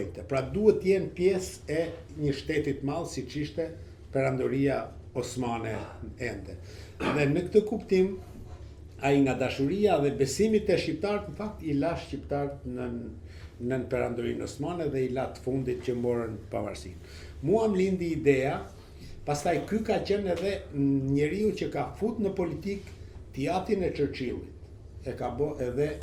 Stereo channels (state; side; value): identical; both; correlation 1.00